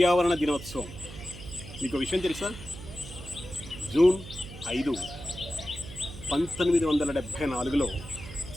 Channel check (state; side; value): noise; right; hum, 13 dB below the sound